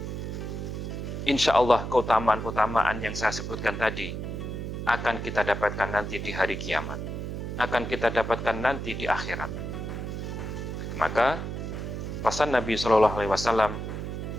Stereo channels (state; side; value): noise; right; hum, 5 dB below the sound